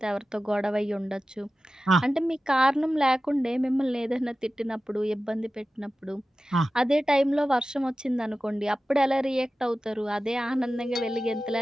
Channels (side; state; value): both; normal; correlation 0.95